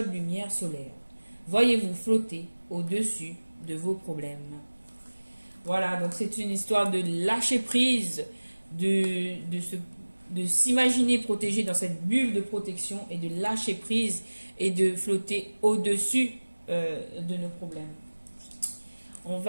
lumière solaire. Voyez-vous flotter au-dessus de vos problèmes. Voilà, donc c'est une histoire de lâcher prise, de s'imaginer protégé dans cette bulle de protection et de lâcher prise et de flotter au-dessus de nos problèmes. On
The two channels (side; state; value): both; inverted; correlation -1.00